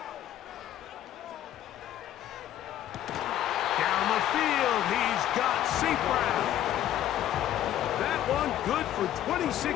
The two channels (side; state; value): right; quieter; 11.9 dB